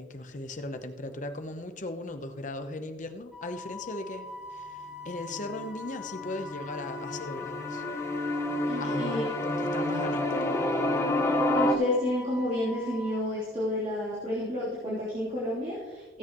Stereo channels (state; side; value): normal; both; correlation 0.55